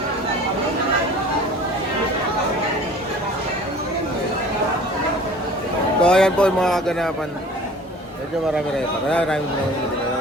So ayan po yung mga kaganapan. Medyo marami rin pa. Marami na dito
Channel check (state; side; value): normal; both; correlation 0.46